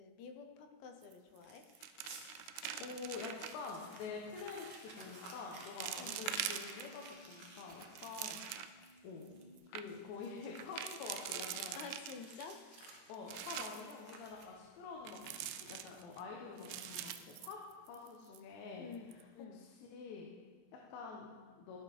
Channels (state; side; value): late; right; 22 ms